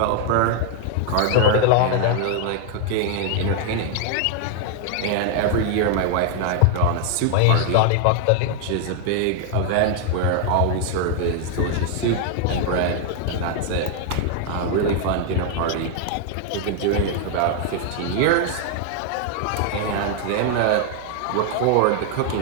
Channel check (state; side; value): different; both; correlation 0.00